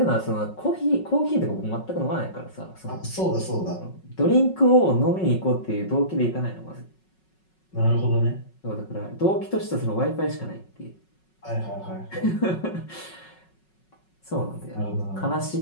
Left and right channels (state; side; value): late; right; 5.4 ms